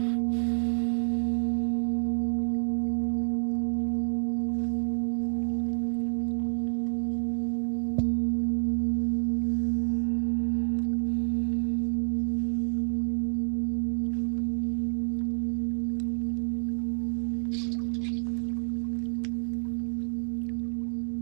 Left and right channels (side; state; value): left; silent; digital silence